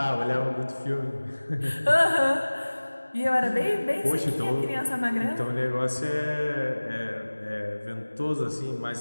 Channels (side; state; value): both; inverted; correlation -1.00